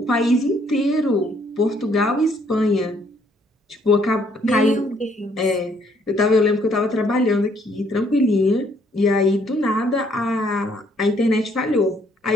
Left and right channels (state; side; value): normal; both; correlation 0.66